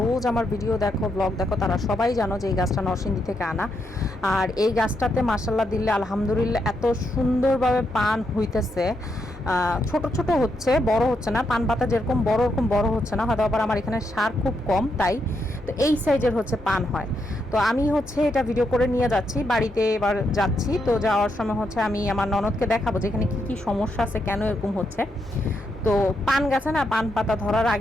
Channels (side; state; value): both; normal; correlation 0.80